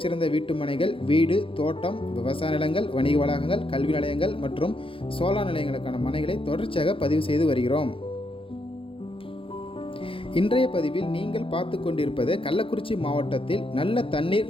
வீட்டுமனைகள், வீடு, தோட்டம், விவசாய நிலங்கள், வணிக வளாகங்கள், கல்வி நிலையங்கள் மற்றும் சோலார் நிலையங்களுக்கான மனைகளை தொடர்ச்சியாக பதிவு செய்து வருகிறோம். இன்றைய பதிவில் நீங்கள் பார்த்து கொண்டிருப்பது கள்ளக்குறிச்சி மாவட்டத்தில் நல்ல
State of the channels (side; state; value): right; late; 0.26 ms